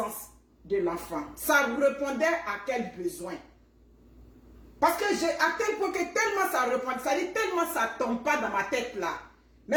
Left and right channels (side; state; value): both; identical; correlation 1.00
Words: de l'enfant? Ça répondait à quel besoin? Parce que à tel point que tellement ça répond, ça dit tellement ça tombe pas dans ma tête là. Mes